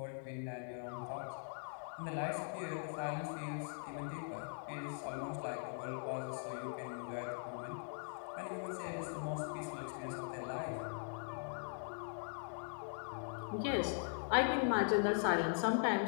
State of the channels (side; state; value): right; silent; digital silence